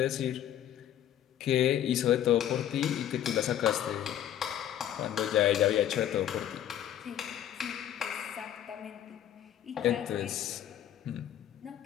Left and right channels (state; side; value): quieter; right; 11.0 dB